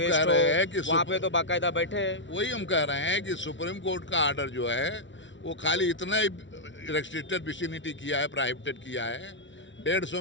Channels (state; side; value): late; right; 0.55 ms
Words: रहे हैं कि वहाँ पे तो बाकायदा बैठे हैं। वही हम कह रहे हैं कि सुप्रीम कोर्ट का आर्डर जो है वो खाली इतना ही रेस्ट्रिक्टेड विसिनिटी किया है, प्रोहिबिटेड किया है।